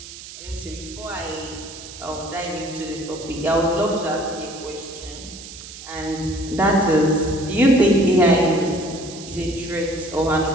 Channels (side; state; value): right; noise; hiss, 14 dB below the sound